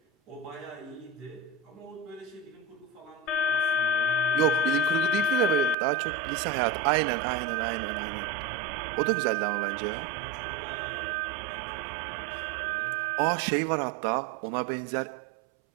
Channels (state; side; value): drops out; left; at 5.8 s